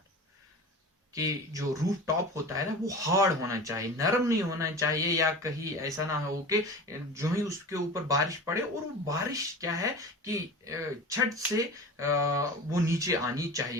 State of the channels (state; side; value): normal; both; correlation 0.34